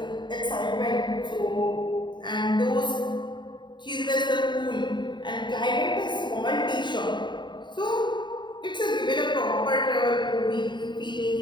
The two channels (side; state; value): right; late; 0.22 ms